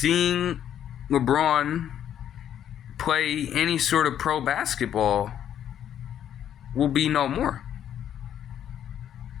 LeBron play any sort of pro basketball will be no more.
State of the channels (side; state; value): right; quieter; 10.1 dB